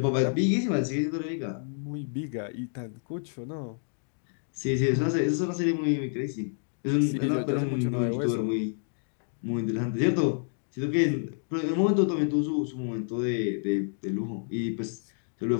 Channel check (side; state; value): right; silent; digital silence